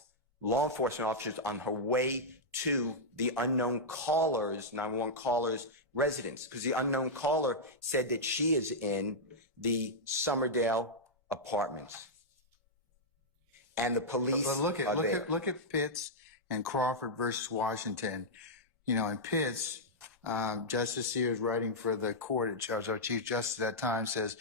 law enforcement officers on her way to the unknown caller's, 911 caller's residence, because the unknown caller said that she is in the Summerdale apartments. And the police Look at Pitts and Crawford versus Washington. You know, in Pitts, Justice Sears, writing for the court, our Chief Justice at that time, says,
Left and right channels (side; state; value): both; normal; correlation -0.08